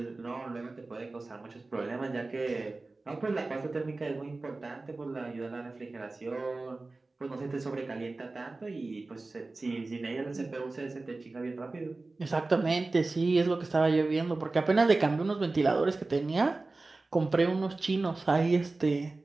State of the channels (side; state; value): left; quieter; 3.4 dB